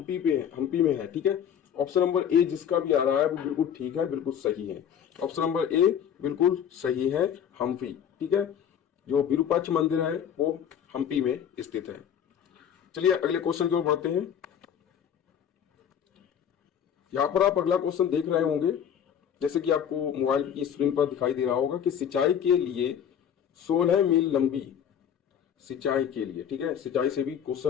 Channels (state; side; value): quieter; right; 8.7 dB